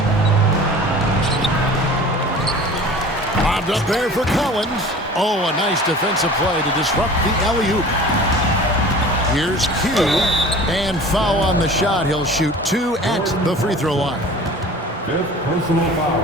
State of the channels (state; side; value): normal; both; correlation 0.42